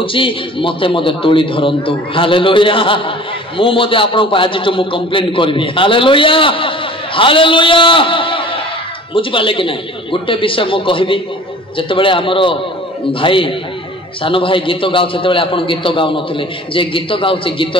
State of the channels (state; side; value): normal; both; correlation 0.45